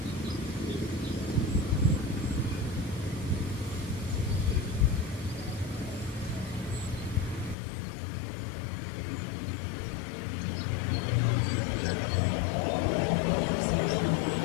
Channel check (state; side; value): drops out; right; at 7.6 s